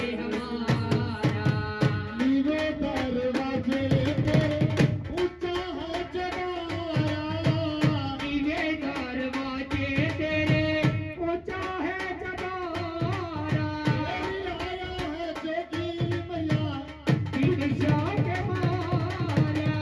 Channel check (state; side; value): identical; both; correlation 1.00